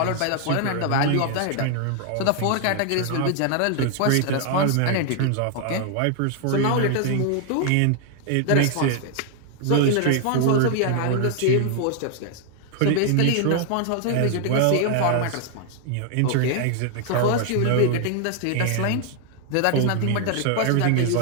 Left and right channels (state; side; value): different; both; correlation 0.00